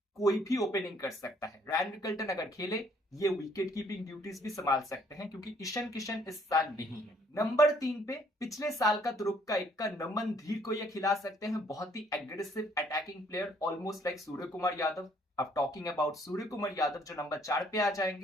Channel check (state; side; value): normal; both; correlation 0.63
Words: कोई भी ओपनिंग कर सकता है। रैन रिकल्टन अगर खेले, ये विकेट कीपिंग ड्यूटीज भी संभाल सकते हैं, क्योंकि ईशान किशन इस साल नहीं है। नंबर 3 पे पिछले साल का तुरुप का नमन धीर को ये खिला सकते हैं। बहुत ही aggressive attacking player, almost like Surya Kumar Yadav. अब टॉकिंग अबाउट सूर्य कुमार यादव, जो नंबर 4 पे आ